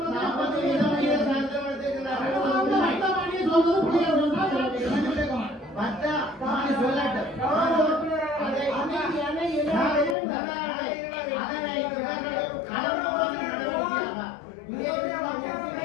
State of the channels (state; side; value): drops out; right; at 10.2 s